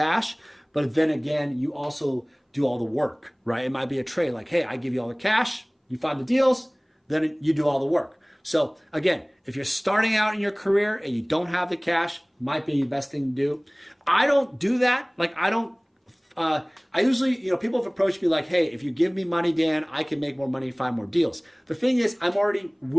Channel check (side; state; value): both; identical; correlation 1.00